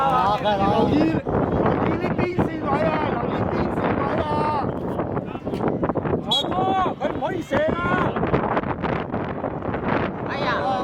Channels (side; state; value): both; identical; correlation 1.00